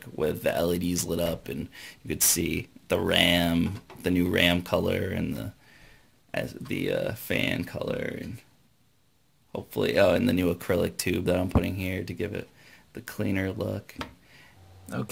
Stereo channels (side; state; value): both; identical; correlation 1.00